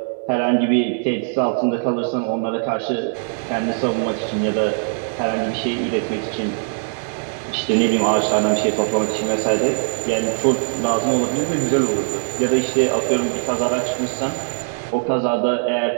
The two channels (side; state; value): left; silent; 63 dB below the other